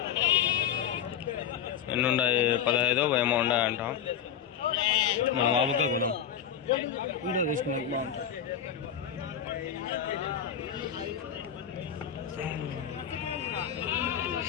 ఎన్ని ఉన్నాయి? 15 ఏమో ఉన్నాయంట. మనం ఆబుగా కొదాం, వీడియో తీసుకున్నాక బాగుంటుంది.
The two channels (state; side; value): quieter; right; 8.8 dB